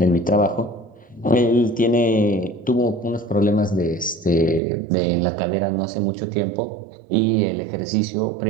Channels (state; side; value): drops out; left; at 4.6 s